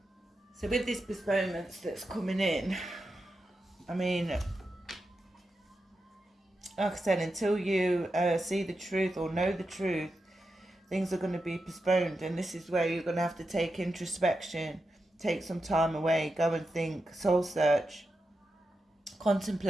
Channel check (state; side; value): normal; both; correlation 0.89